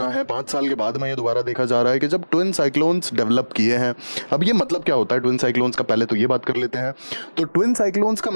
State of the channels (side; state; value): both; inverted; correlation -1.00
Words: है। 5 साल के बाद में ये दोबारा देखा जा रहा है कि जब ट्विन साइक्लोन्स डेवलप किए हैं। अब ये मतलब क्या होता है ट्विन साइक्लोन्स का, पहले तो ये बात कर लेते हैं। तो ट्विन साइक्लोन्स का